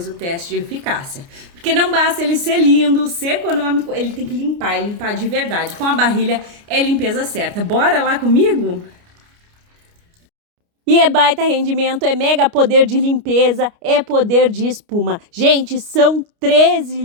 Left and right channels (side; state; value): left; late; 29 ms